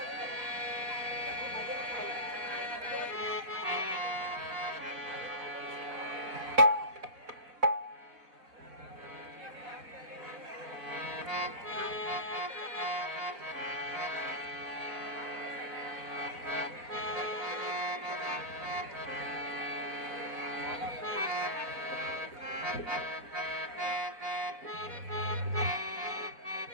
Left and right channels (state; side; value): late; left; 4.1 ms